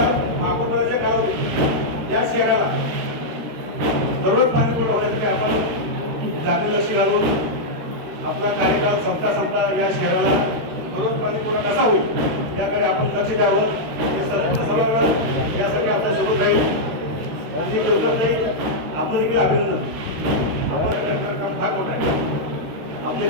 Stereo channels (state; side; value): late; left; 13 ms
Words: महापौराच्या काळामध्ये या शहराला दररोज पाणी पुरवठा होण्यासाठी आपण जातीला शिरालो. आपला कार्यकाळ संपता या शहराला दररोज पाणी पुरवठा कसा होईल याकडे आपण लक्ष द्यावं. हे सभागृह यासाठी आपल्या सोबत राहील. आपलं देखील अभिनंदन. काम फार मोठं आहे. आपले